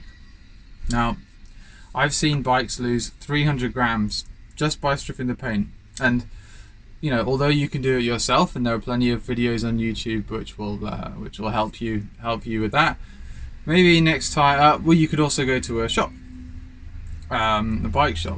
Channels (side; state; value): both; identical; correlation 1.00